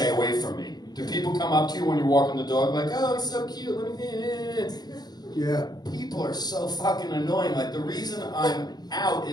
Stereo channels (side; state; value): right; late; 0.20 ms